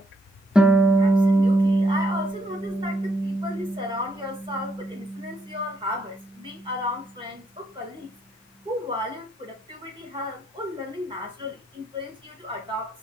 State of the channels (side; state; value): both; normal; correlation 0.74